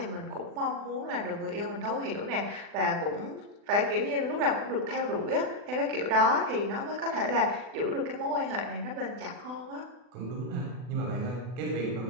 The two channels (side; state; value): left; late; 40 ms